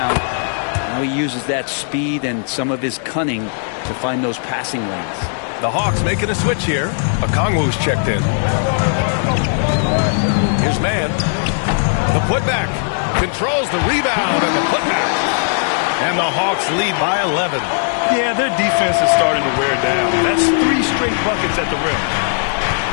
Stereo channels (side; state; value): right; silent; digital silence